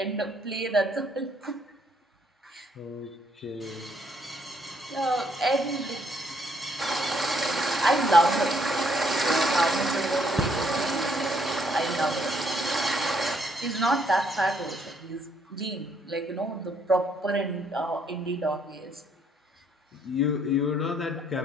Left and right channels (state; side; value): normal; both; correlation 0.69